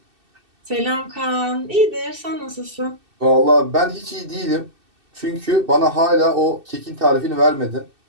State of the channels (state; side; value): late; left; 2.6 ms